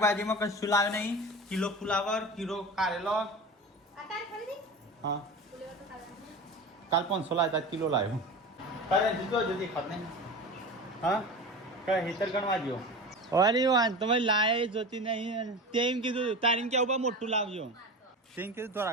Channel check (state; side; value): normal; both; correlation 0.30